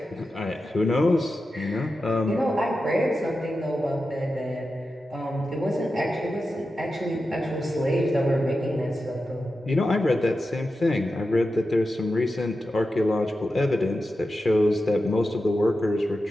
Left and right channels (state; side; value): normal; both; correlation 0.91